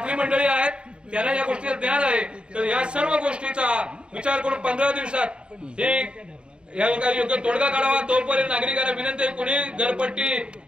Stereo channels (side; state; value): left; late; 0.053 ms